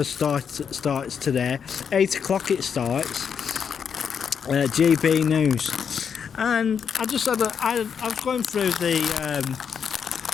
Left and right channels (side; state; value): right; quieter; 7.1 dB